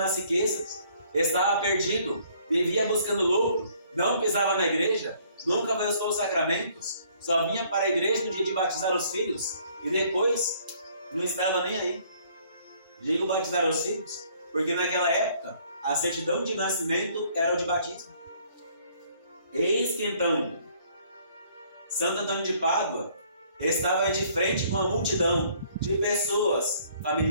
riquezas, estava perdido, vivia buscando lucro, não pisava na igreja, nunca buscou os sacramentos, só vinha para a igreja no dia de batizar os filhos, e depois não estava nem aí. Digo batizar os filhos, porque naquela época a certidão de nascimento era o de batismo. Eis que então Santo Antônio de Pádua estava de frente com uma multidão de pessoas,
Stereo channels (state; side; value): inverted; both; correlation -0.62